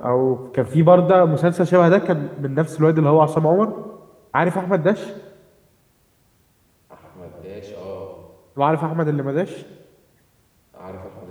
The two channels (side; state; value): both; identical; correlation 1.00